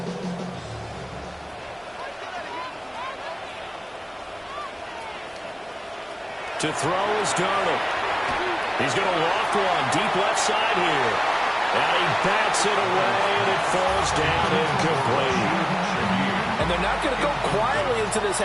To throw is Darnold. He's going to loft one deep left side here. And he bats it away, and it falls down incomplete. And they're not going to go quietly into this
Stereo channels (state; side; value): identical; both; correlation 1.00